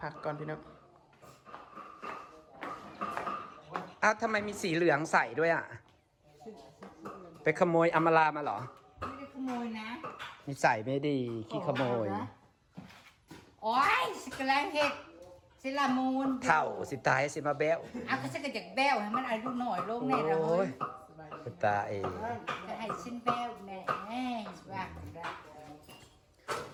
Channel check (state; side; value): identical; both; correlation 1.00